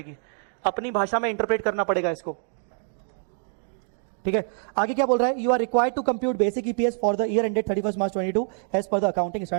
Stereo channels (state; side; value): silent; left; 61 dB below the other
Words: अपनी भाषा में इंटरप्रेट करना पड़ेगा इसको। ठीक है, आगे क्या बोल रहा है? You are required to compute basic EPS for the year ended 31 March 2022 as per the accounting